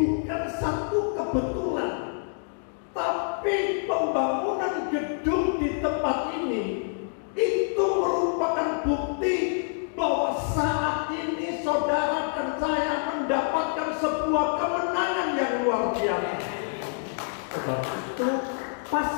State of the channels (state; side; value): silent; right; digital silence